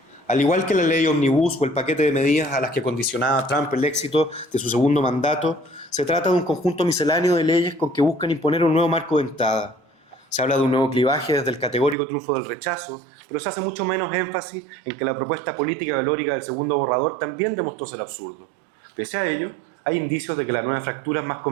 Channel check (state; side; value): drops out; left; at 12.0 s